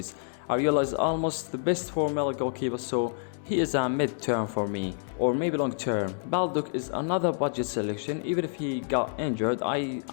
Areola is almost the best for-middle goalkeeper, so he is a mid-term for me, or maybe long-term. Baldock is another budget selection. Even if he got injured,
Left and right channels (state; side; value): silent; right; digital silence